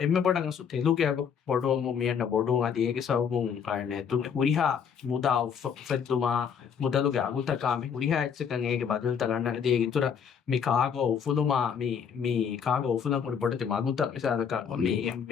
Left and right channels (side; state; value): right; quieter; 7.2 dB